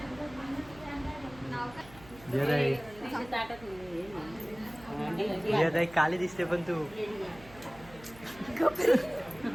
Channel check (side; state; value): right; noise; hum, 20 dB below the sound